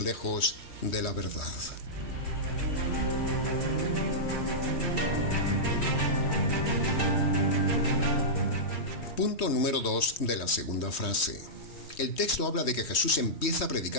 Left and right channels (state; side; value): late; right; 3.2 ms